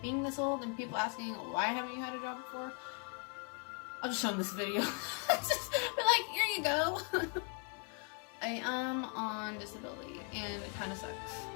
being this old and people asking why haven't you had a job before, I'll just show them this video. Just be like, here you go. I am on disability, and it kind of sucks.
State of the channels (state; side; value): quieter; right; 39.3 dB